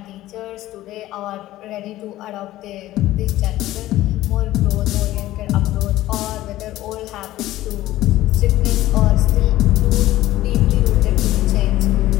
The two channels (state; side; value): quieter; right; 15.3 dB